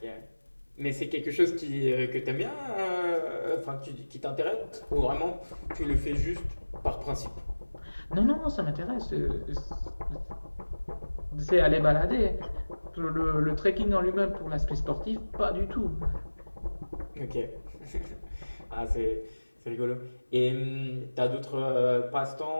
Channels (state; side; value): inverted; both; correlation -1.00